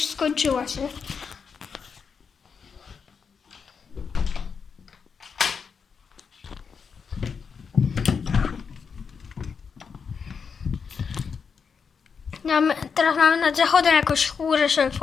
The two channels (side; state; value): right; quieter; 6.0 dB